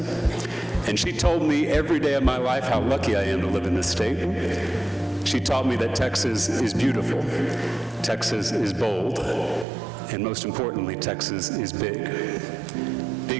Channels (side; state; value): left; drops out; at 9.7 s